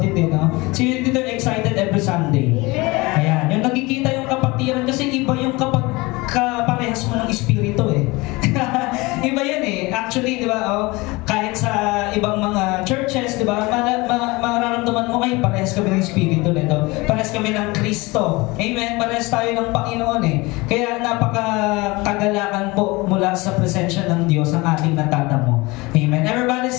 eh, no? Sino dito excited every Sunday? Ayan, yung nakikita yung kapatiran kasi iba yung kapag kaparehas mo ng espiritu eh. Iba yan eh. Actually, di ba, kahit sa ibang mga churches, di ba, mararamdaman mo kayo, parehas kami ng espiritu nito. Parehas kami ng Kristo. Amen? Parehas tayo ng Panginoon eh. Kaya napakakagalakan po mula sa presensya ng Diyos ang ating natatamo. Amen? Everybody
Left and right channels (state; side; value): quieter; right; 23.5 dB